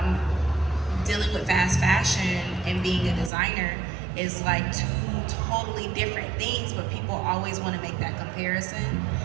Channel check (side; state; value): left; drops out; at 3.3 s